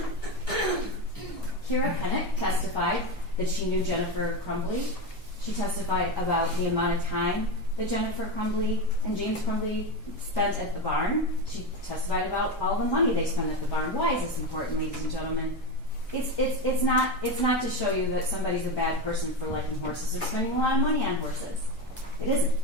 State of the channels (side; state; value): both; normal; correlation 0.17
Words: Kira Kennett testified that she knew Jennifer Crumbly. She testified about the amount of time that Jennifer Crumbly and James Crumbly spent at the barn. She testified about all the money they spent at the barn. Why is this important, ladies and gentlemen? It's not to show you that somebody's a bad person for liking horses or spending a lot of money on horses. It isn't.